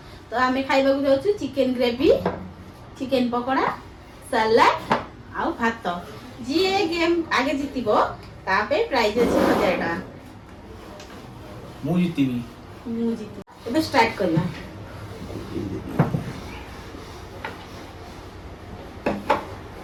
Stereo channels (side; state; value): both; identical; correlation 1.00